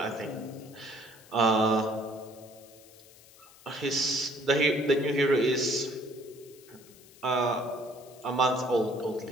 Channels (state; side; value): noise; left; hiss, 23 dB below the sound